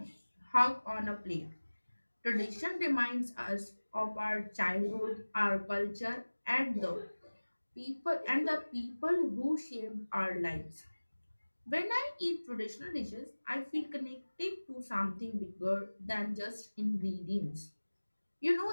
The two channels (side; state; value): both; inverted; correlation -1.00